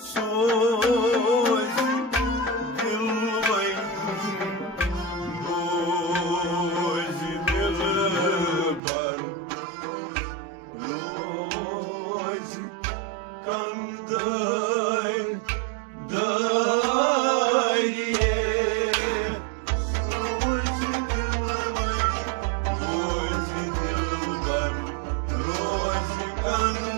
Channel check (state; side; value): drops out; left; at 8.8 s